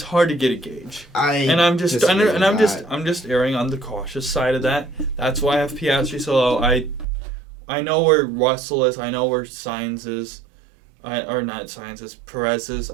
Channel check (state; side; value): drops out; left; at 7.1 s